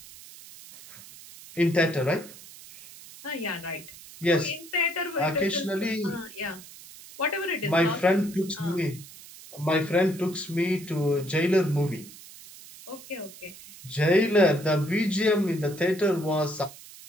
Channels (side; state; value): right; noise; hiss, 18 dB below the sound